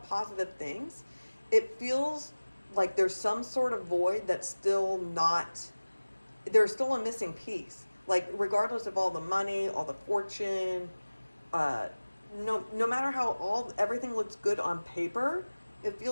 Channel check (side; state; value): both; inverted; correlation -1.00